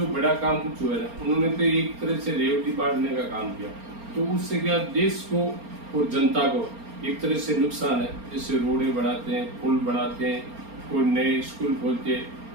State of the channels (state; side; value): late; left; 4.3 ms